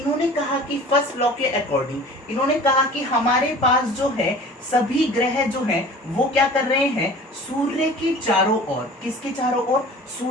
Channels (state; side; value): normal; both; correlation 0.43